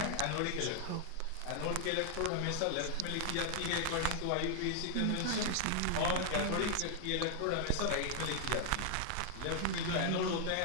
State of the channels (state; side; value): different; both; correlation 0.00